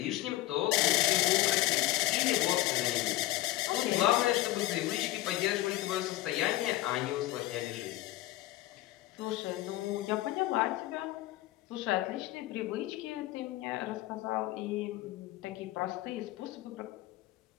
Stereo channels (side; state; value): right; quieter; 16.4 dB